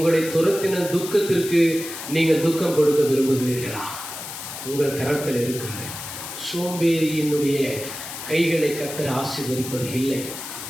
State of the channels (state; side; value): noise; left; hiss, 9 dB below the sound